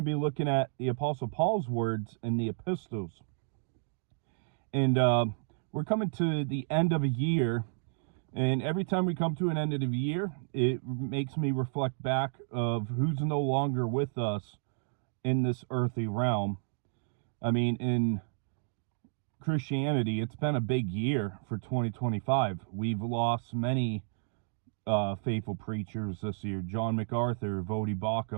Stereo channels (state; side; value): silent; left; digital silence